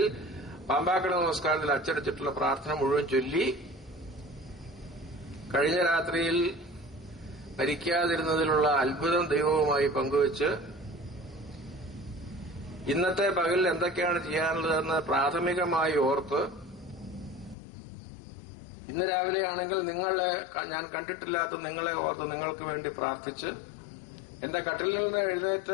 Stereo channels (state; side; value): drops out; right; at 17.6 s